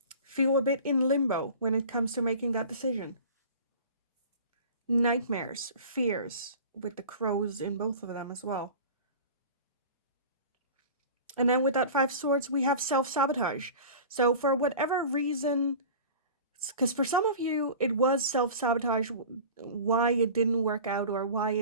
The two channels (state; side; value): inverted; both; correlation -0.39